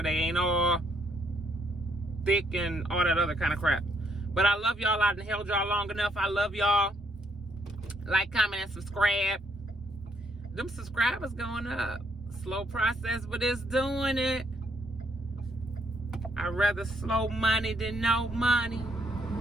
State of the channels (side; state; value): both; normal; correlation 0.71